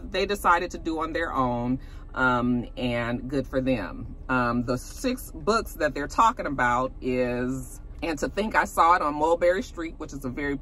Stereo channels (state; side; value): identical; both; correlation 1.00